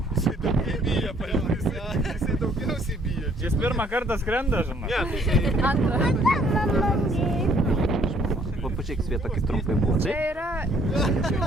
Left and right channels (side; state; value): both; normal; correlation 0.63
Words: Jisai daugiau bijo, paėmės. Jisai daugiausiai bijo. Jis pirmą kartą skrenda, žinai. Ne, tai jisai... Antrą. Va, pačiaik Sveta, kaip trumpai buvo. Čia Taip? yra...